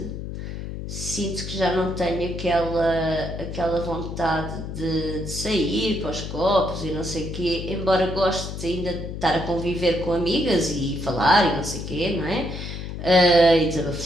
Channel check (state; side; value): noise; left; hum, 7 dB below the sound